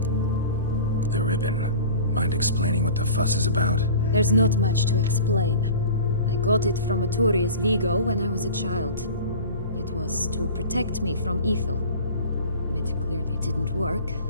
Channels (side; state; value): both; inverted; correlation -0.40